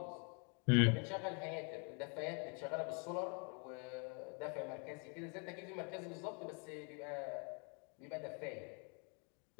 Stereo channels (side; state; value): right; quieter; 37.3 dB